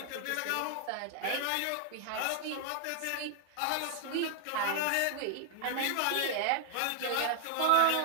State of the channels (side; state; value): both; different; correlation 0.00